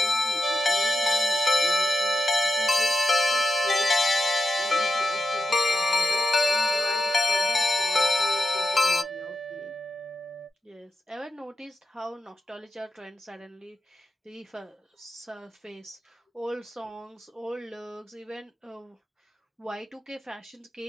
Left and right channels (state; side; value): normal; both; correlation 0.88